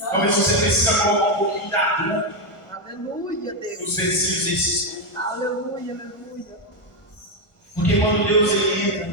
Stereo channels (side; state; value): right; late; 1.4 ms